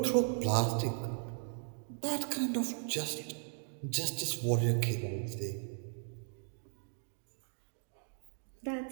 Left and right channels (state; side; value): silent; left; 53 dB below the other